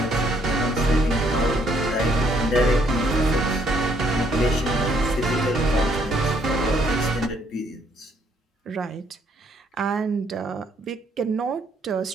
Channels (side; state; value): both; normal; correlation 0.68